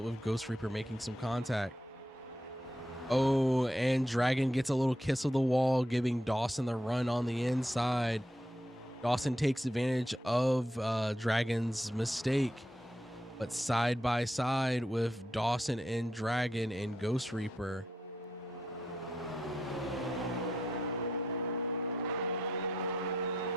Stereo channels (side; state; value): both; normal; correlation 0.81